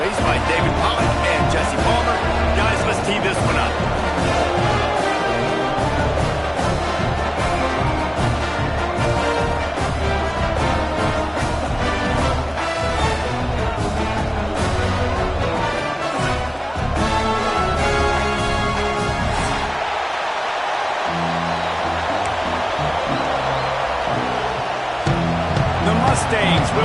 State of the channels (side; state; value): both; identical; correlation 1.00